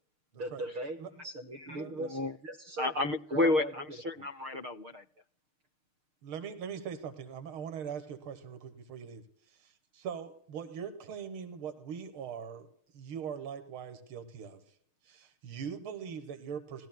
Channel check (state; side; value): late; left; 6.6 ms